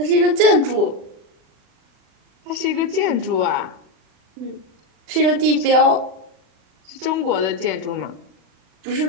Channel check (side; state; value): left; late; 40 ms